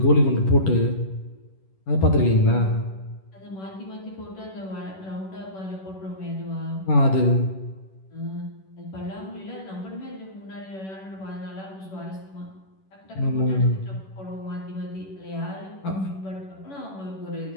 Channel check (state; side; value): late; right; 11 ms